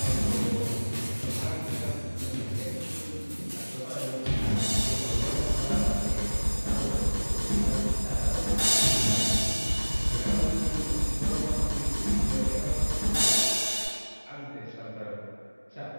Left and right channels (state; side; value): inverted; both; correlation -1.00